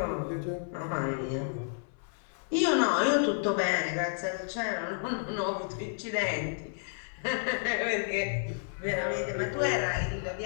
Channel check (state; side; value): silent; right; 57 dB below the other